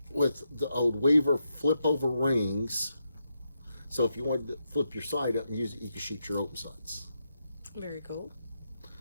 with the old Weaver flip over rings. So if you wanted to flip your sight up and use it, you can shoot your open sights. Very cool.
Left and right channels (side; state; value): both; inverted; correlation -0.83